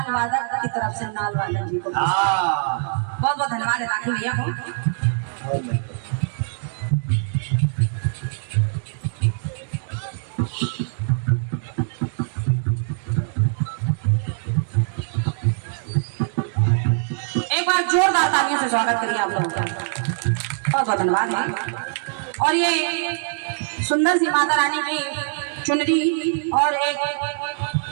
वादक की तरफ से नाल वादक जी को बहुत बहुत धन्यवाद है लाखन भैया को। एक बार जोरदार तालियों से स्वागत करिए आप लोगों का, बहुत बहुत धन्यवाद है। और ये सुंदर सी माता रानी की चुनरी और एक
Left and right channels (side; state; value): left; silent; digital silence